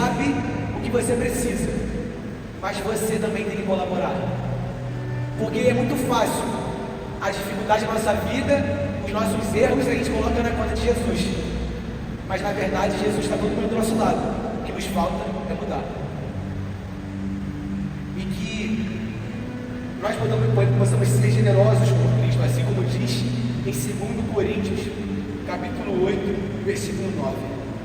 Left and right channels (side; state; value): both; identical; correlation 1.00